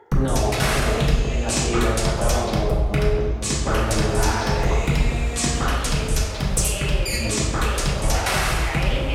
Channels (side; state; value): both; identical; correlation 1.00